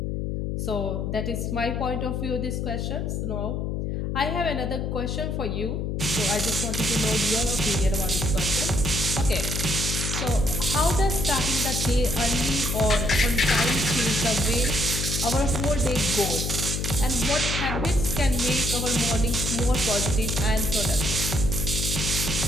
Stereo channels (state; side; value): noise; left; hum, 1 dB below the sound